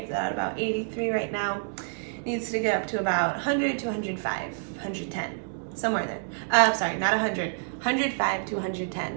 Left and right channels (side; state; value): left; silent; digital silence